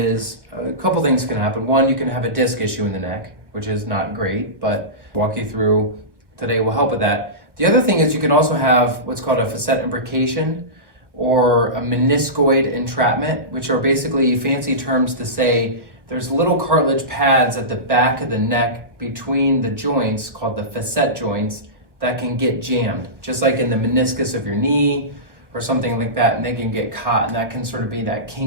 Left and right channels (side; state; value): left; late; 1.0 ms